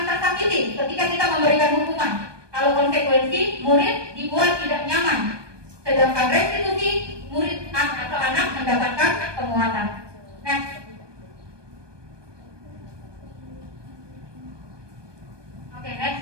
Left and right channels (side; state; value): left; late; 1.2 ms